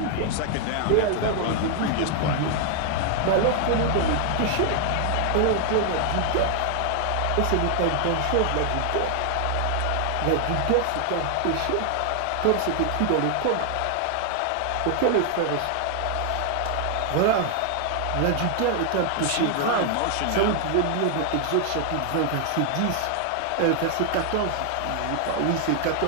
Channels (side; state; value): both; different; correlation 0.00